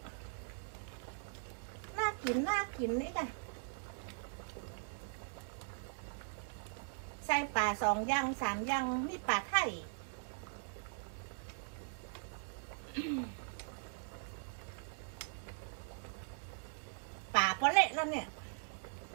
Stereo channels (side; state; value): left; silent; digital silence